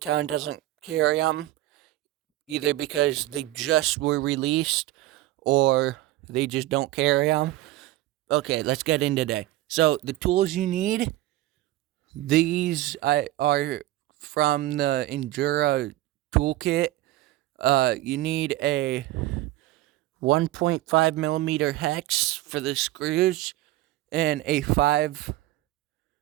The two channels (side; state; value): left; quieter; 16.2 dB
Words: doesn't carry them, either because they just were released or they just don't carry them. Okay, let's get in today. So the tools you need, these are from the Endura toolkit. You need a 1.5 millimeter hex for the screws and a 5